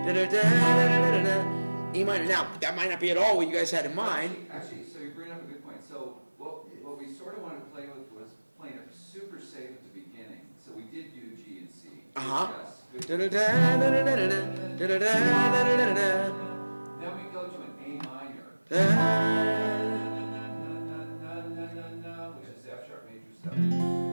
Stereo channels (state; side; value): inverted; both; correlation -1.00